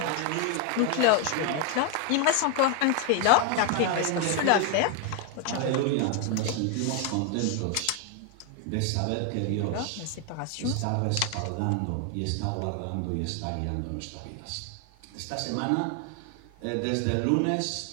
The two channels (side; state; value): both; different; correlation 0.01